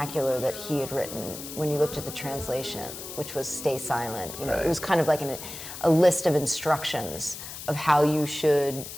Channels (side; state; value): left; noise; hiss, 10 dB below the sound